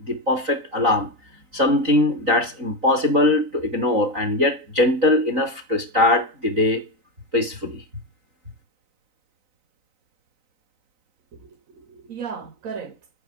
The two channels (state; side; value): late; left; 3.9 ms